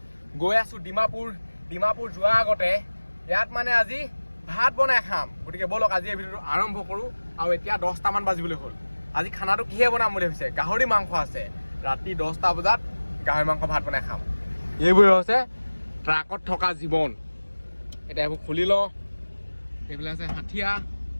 গৈ আছো ডিমাপুৰ যোৱাৰ আগতে ইয়াত মানে আজি ভাত বনাই খাম। গতিকে বলক আজি এই ভিডিঅ'টো আৰম্ভ কৰোঁ। আৰু এতিয়া 10টামান বাজিবলৈ হ'ল। আজি খানাটো কিহে বনাম বুলি ভাবিছে? গাহৰি মাংস আছে। ৰাতি 10টা বজাত গাহৰি মাংস ভাত বনাই খাম। এইবোৰে হৈছে ট্ৰাকত থকা জীৱন। এতিয়া এইবোৰ খুলি লওঁ। এইফালে আছে হাঠিয়া,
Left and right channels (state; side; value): inverted; both; correlation -1.00